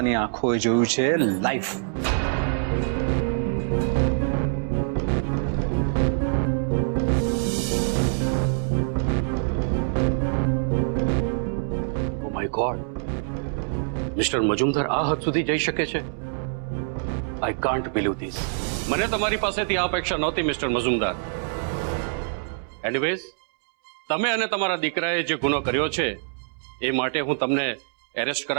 આંખોએ જોયું છે live. Oh my God, mister Majumdar આ હદ સુધી જઈ શકે છે? I can't believe this. મને તમારી પાસેથી આ અપેક્ષા નહોતી મિસ્ટર મજુમદાર. એનીવેઝ, તમે અને તમારા દીકરાએ જે ગુનો કર્યો છે એ માટે હું તમને એરેસ્ટ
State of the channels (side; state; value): left; silent; 62 dB below the other